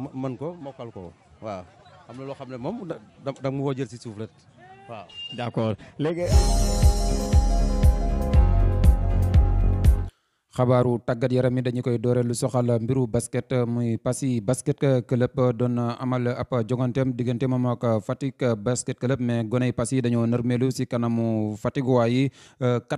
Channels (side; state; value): both; identical; correlation 1.00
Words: mën ko mokkal ko waaw am na loo xam ne moom da mu woo jël si suuf rek waaw. d'accord léegi. xabaaru tàggat yaram yi dañu koy doore lu soxal mbiru basket muy Passy basket club doon amal ab joganteem diggante moom ak Fatick basket club mais goney Passy dañoo nërmeelu si kanamu Fatick yi